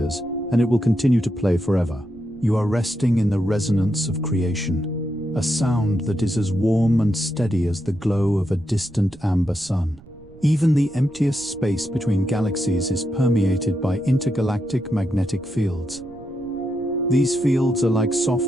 and it will continue to play forever. You are resting in the resonance of creation, a sound that is as warm and steady as the glow of a distant amber sun. Even the emptiest space between galaxies is permeated by intergalactic magnetic fields. These fields are like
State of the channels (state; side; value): noise; right; rumble, 23 dB below the sound